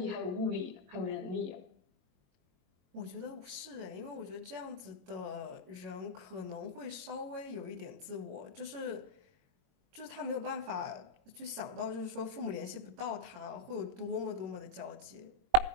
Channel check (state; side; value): late; left; 22 ms